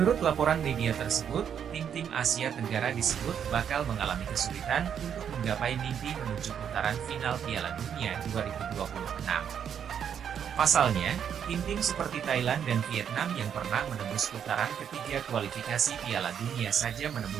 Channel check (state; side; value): quieter; left; 8.3 dB